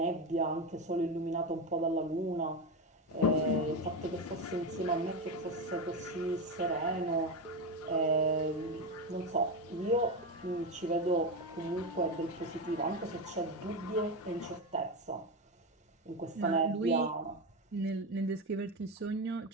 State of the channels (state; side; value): normal; both; correlation 0.15